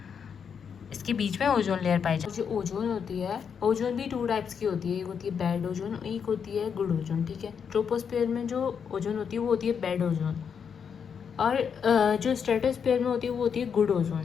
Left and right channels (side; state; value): right; quieter; 7.0 dB